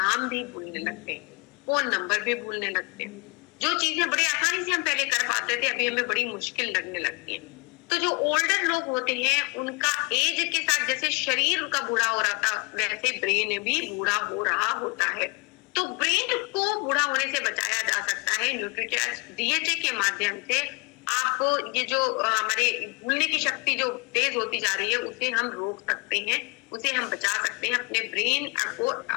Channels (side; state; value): right; quieter; 30.4 dB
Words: भी भूलने लगते हैं, फोन नंबर भी भूलने लगते हैं। जो चीजें बड़ी आसानी से हम पहले कर पाते थे अभी हमें बड़ी मुश्किल लगने लगती है। तो जो ओल्डर लोग होते हैं उनका एज के साथ जैसे शरीर उनका बूढ़ा हो रहा था वैसे ब्रेन भी बूढ़ा हो रहा होता है। तो ब्रेन को बूढ़ा होने से बचाया जा सकता है न्यूट्रीचार्ज डीएचए के माध्यम से। आप ये जो हमारे भूलने की शक्ति जो तेज होती जा रही है उसे हम रोक सकते हैं, उसे हम बचा सकते हैं अपने ब्रेन को